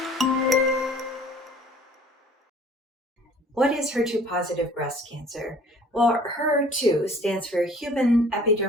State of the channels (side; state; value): both; normal; correlation 0.51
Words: What is HER2 positive breast cancer? Well, HER2 stands for Human